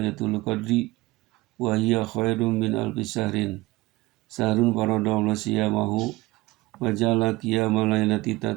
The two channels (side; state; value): left; quieter; 20.2 dB